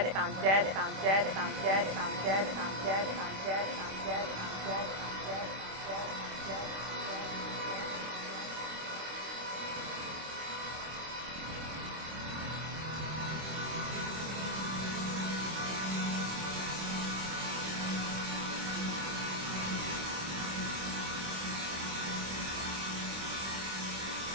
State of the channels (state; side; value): late; left; 26 ms